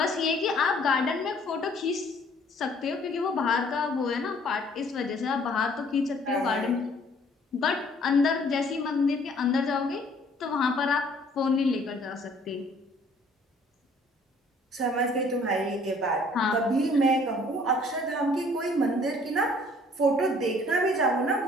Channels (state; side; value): normal; both; correlation 0.58